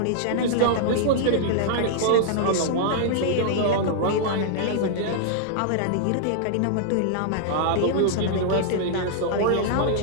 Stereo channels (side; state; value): both; different; correlation -0.01